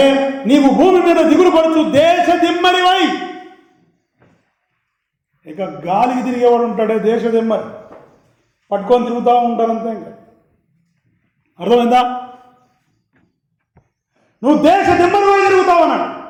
నీవు భూమి మీద దిగులు పడుచు దేశ దిమ్మరివై. ఇక గాలికి తిరిగేవాడు ఉంటాడే దేశ దిమ్మరి, పట్టుకొని తిరుగుతూ ఉంటారంతే. ఇంకా అర్థమైందా? నువ్వు దేశ దిమ్మరివై తిరుగుతావు అన్నాడు.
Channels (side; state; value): both; identical; correlation 1.00